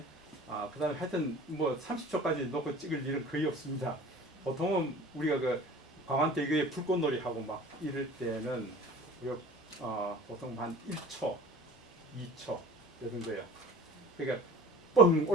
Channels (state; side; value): normal; both; correlation 0.43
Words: 그 다음에 하여튼 뭐 30초까지 놓고 찍을 일은 거의 없습니다. 보통은 우리가 그 광안대교에 불꽃놀이 하고 막 이럴 때는 우리가 보통 한 1초, 2초 요 정도예요. 그러니까 뻥